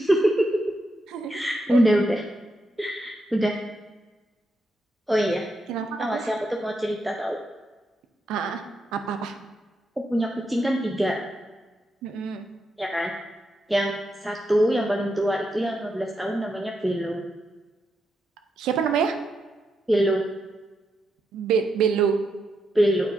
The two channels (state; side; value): normal; both; correlation 0.83